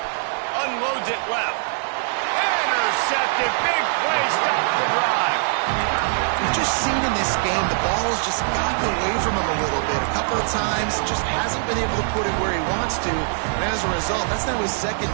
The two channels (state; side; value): silent; left; digital silence